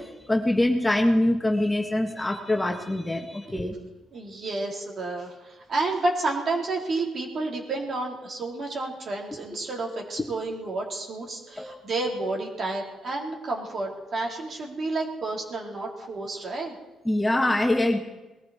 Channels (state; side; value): normal; both; correlation 0.89